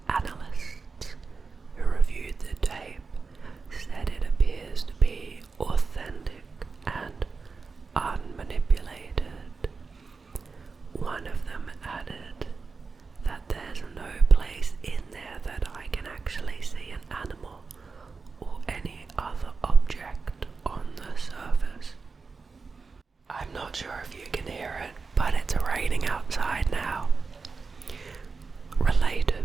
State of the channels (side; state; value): left; quieter; 4.6 dB